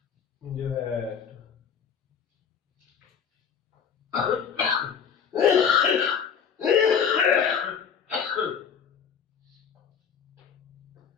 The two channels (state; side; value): quieter; right; 7.3 dB